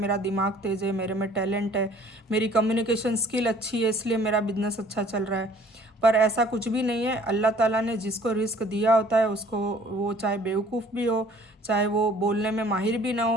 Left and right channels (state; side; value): normal; both; correlation 0.54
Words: दिमाग तेज़ है, मेरे में टैलेंट है, मेरी कम्युनिकेशन स्किल अच्छी है, इसलिए मेरा बिजनेस अच्छा चल रहा है। पर ऐसा कुछ भी नहीं है। अल्लाह ताला ने जिसको रिस्क दिया होता है उसको, वो चाहे बेवकूफ़ भी हो, चाहे वो बोलने में माहिर भी ना